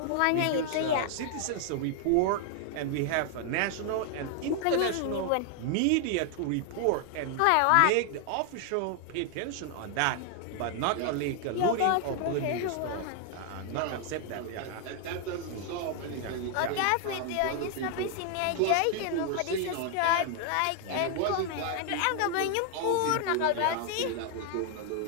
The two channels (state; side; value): different; both; correlation 0.00